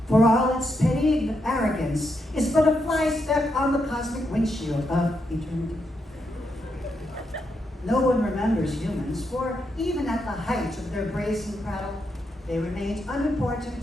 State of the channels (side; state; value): both; normal; correlation 0.81